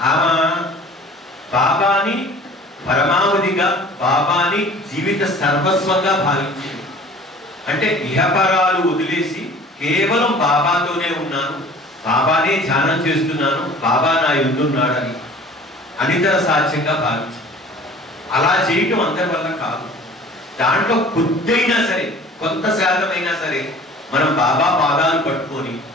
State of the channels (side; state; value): both; normal; correlation 0.46